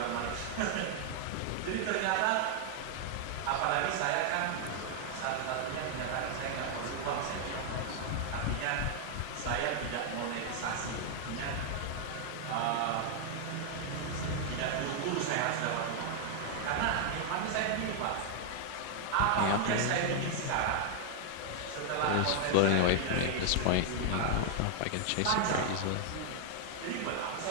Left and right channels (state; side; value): different; both; correlation 0.00